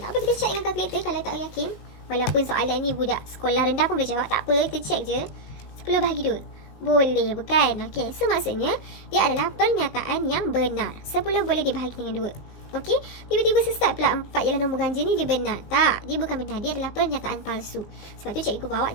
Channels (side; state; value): right; late; 19 ms